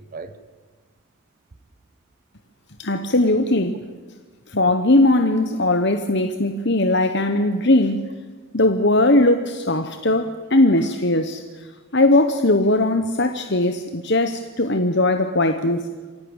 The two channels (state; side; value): normal; both; correlation 0.15